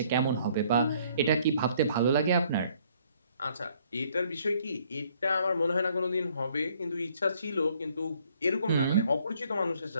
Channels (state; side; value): inverted; both; correlation -0.63